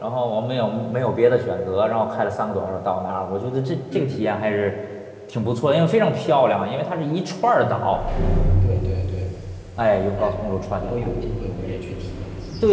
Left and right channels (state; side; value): identical; both; correlation 1.00